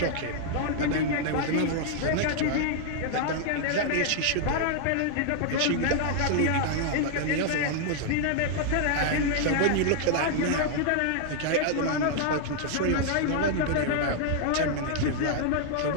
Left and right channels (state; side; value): different; both; correlation 0.00